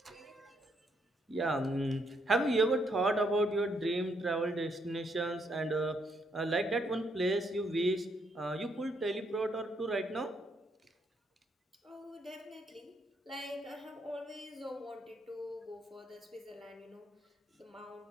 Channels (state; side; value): normal; both; correlation 0.74